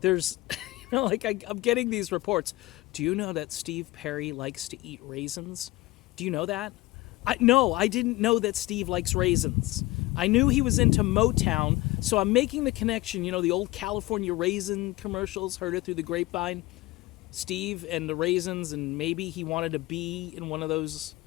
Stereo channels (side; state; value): right; quieter; 19.4 dB